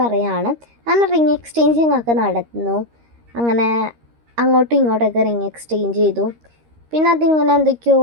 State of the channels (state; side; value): late; left; 13 ms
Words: അങ്ങനെ റിങ് എക്സ്ചേഞ്ചിങ് ഒക്കെ നടന്നു. അങ്ങനെ അങ്ങോട്ടും ഇങ്ങോട്ടൊക്കെ റിങ് എക്സ്ചേഞ്ച് ചെയ്തു. പിന്നെ അതിങ്ങനെ എന്തൊക്കെയോ